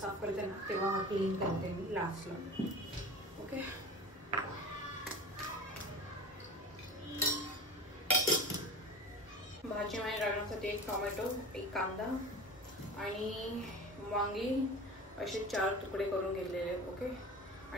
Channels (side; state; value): both; normal; correlation 0.34